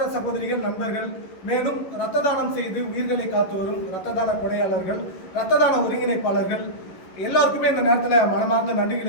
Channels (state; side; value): late; right; 11 ms